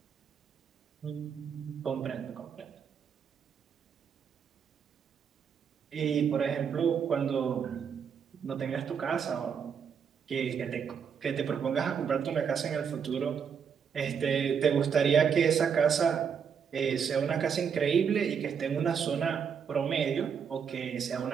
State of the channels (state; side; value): quieter; left; 7.0 dB